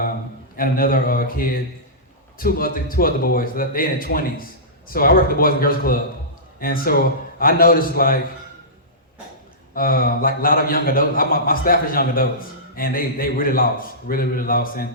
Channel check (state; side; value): normal; both; correlation -0.19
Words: another kid, two other boys. They in their 20s. So I work at the Boys and Girls Club, and so I noticed like a lot of young adults. My staff is young adults, and they really lost, really lost, and